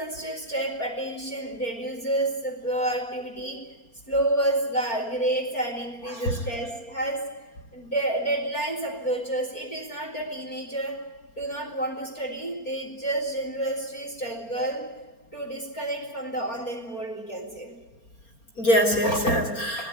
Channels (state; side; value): late; right; 4.3 ms